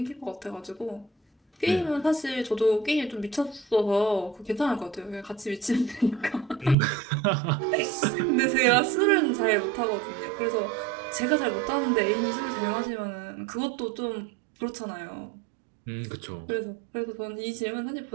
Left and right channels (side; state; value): left; drops out; at 6.8 s